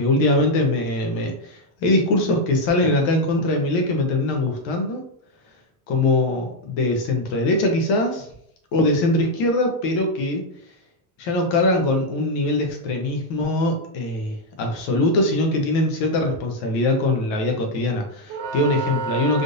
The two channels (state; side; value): normal; both; correlation 0.02